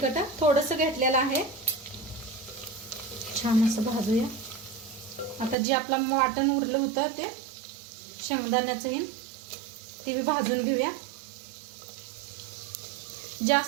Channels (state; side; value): drops out; left; at 5.6 s